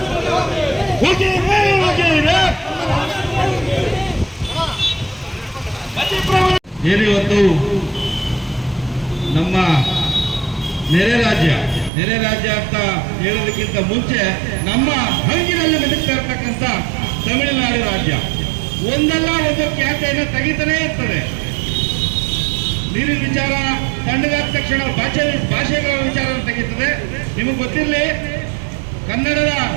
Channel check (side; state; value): left; drops out; at 11.9 s